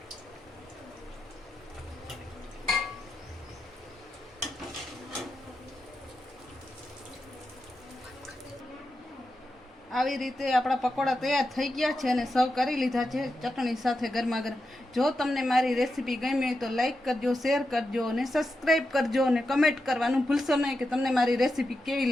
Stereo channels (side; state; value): both; normal; correlation 0.88